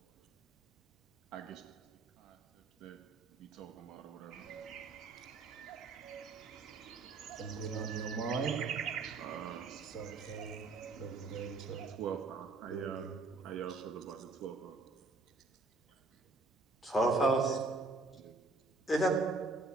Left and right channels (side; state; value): left; quieter; 3.5 dB